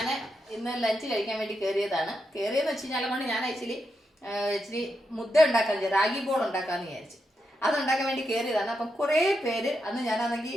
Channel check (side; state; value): both; normal; correlation 0.85